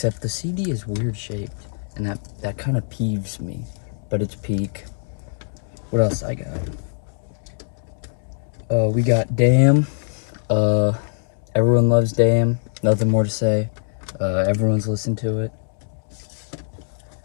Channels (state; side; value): silent; right; 64 dB below the other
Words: the CD is weird shaped, and that kind of peeves me. But it's peak. What else I got? We got Damn. Everyone loves Damn. Nothing more to say. Everyone's listened to it.